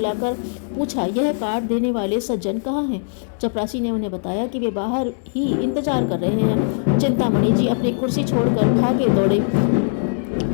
पूछा, यह कार्ड देने वाले सज्जन कहाँ हैं? चपरासी ने उन्हें बताया कि वे बाहर ही इंतजार कर रहे हैं। चिंतामणि जी अपनी कुर्सी छोड़कर भागे दौड़े।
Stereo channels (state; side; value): silent; right; digital silence